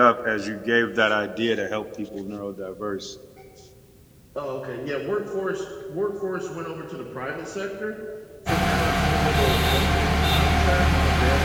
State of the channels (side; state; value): both; identical; correlation 1.00